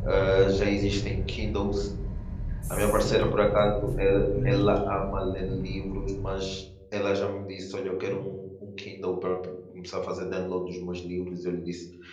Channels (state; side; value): identical; both; correlation 1.00